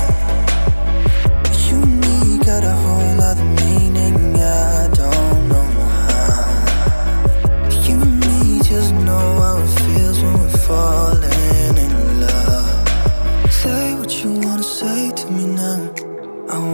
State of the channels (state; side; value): inverted; both; correlation -1.00